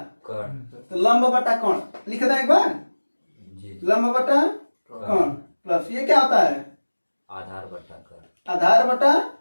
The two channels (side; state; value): both; inverted; correlation -1.00